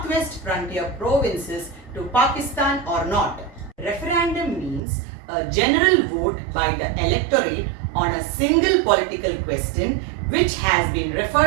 frontier provinces to Pakistan or not. Referendum means a general vote by the electorate on a single political question which has been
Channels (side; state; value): left; drops out; at 4.8 s